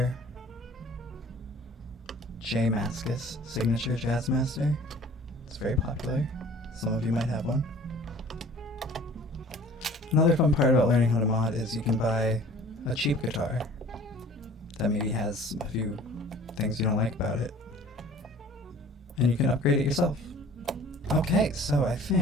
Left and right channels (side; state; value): both; normal; correlation 0.49